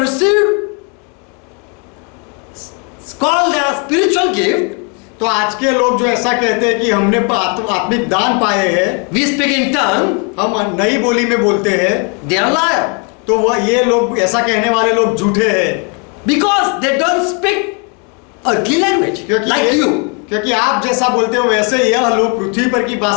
received called as spiritual gift, तो आज के लोग जो ऐसा कहते हैं कि हमने आत्मिक दान पाए हैं, we speak in tongue, हम नई बोली में बोलते हैं, they are liar तो वह ये लोग ऐसा कहने वाले लोग झूठे हैं। because they don't speak earthly language like you. क्योंकि आप जैसा बोलते हो वैसे यह लोग पृथ्वी पर की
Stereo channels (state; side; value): quieter; right; 35.2 dB